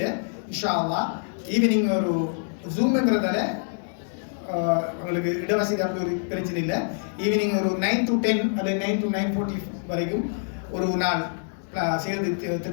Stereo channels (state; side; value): silent; right; 61 dB below the other